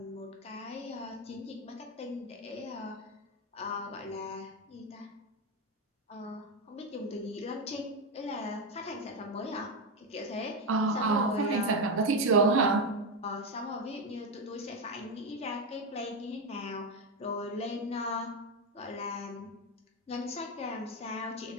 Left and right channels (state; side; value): normal; both; correlation 0.11